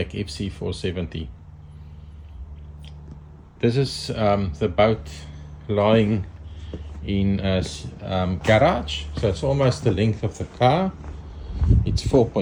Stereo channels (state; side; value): identical; both; correlation 1.00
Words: FC470. This is the boat lying in a garage, so it's almost the length of the car. It's